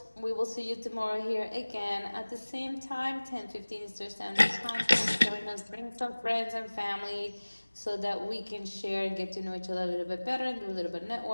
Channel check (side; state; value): both; inverted; correlation -1.00